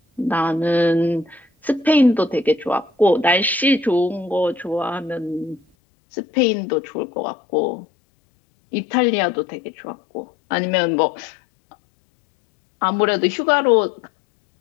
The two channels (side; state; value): right; drops out; at 5.6 s